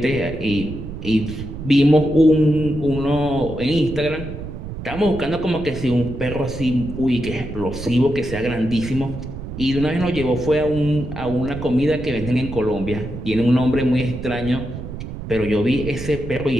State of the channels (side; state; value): right; noise; rumble, 9 dB below the sound